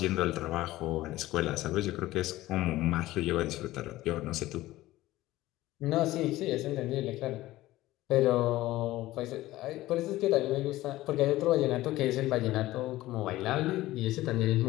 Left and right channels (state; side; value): quieter; right; 16.7 dB